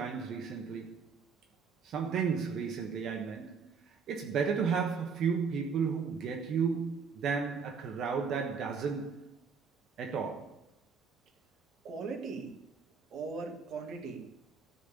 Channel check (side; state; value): left; quieter; 5.7 dB